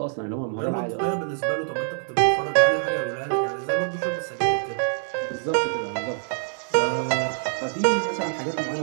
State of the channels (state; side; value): silent; left; digital silence